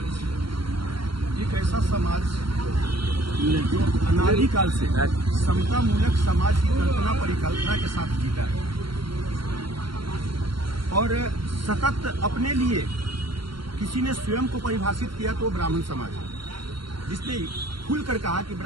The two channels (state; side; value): late; left; 0.73 ms